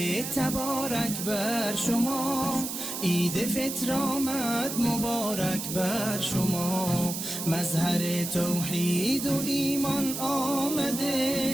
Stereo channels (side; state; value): right; noise; hiss, 5 dB below the sound